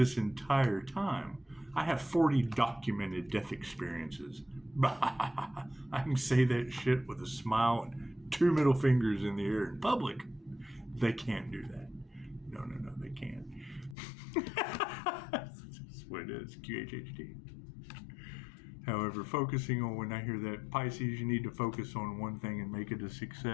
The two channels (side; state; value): right; drops out; at 14.0 s